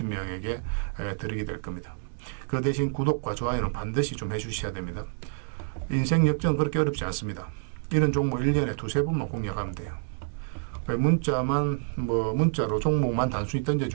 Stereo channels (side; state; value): left; silent; digital silence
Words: 드리게 될 겁니다. 그 대신 구독과 좋아요는 반드시 좀 해주셔야 됩니다. 인생 역전 그렇게 어렵지 않습니다. 이런 종목 1년에 두세 번만 공략하면 돼요. 문자로 종목만 단순히